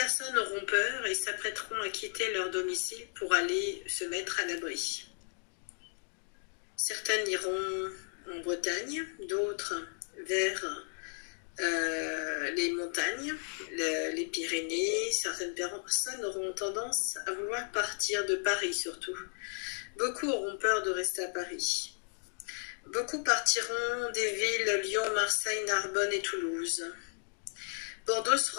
auront peur et s'apprêteront à quitter leur domicile pour aller se mettre à l'abri. Certaines iront en Bretagne, d'autres vers les montagnes, les Pyrénées. Certaines personnes auront tendance à vouloir partir de Paris surtout. Beaucoup auront peur de rester à Paris. Beaucoup partiront des villes Lyon, Marseille, Narbonne et Toulouse. Bordeaux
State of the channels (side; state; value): right; silent; 55 dB below the other